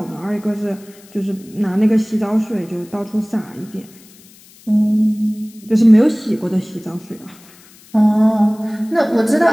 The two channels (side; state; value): left; noise; hiss, 25 dB below the sound